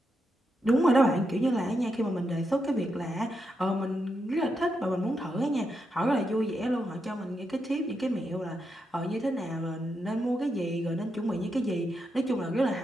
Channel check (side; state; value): both; normal; correlation 0.84